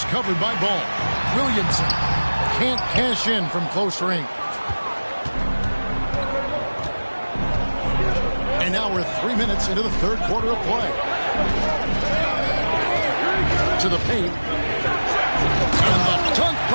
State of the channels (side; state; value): both; inverted; correlation -1.00